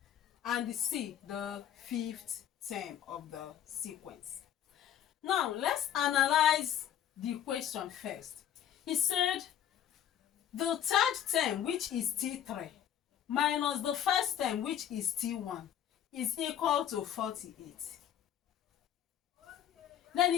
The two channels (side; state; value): right; quieter; 10.2 dB